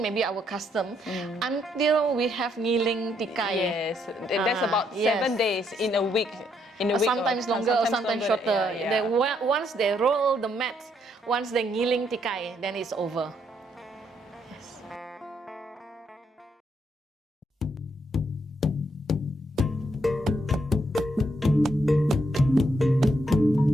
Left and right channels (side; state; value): both; normal; correlation 0.74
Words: maybe our custom, until we have ngiling tikai. Yes, that's about 7 days in a week. Sometimes longer or sometimes shorter. Yeah. Once they roll the mat, once they ngiling tikai, then it's over. Yes.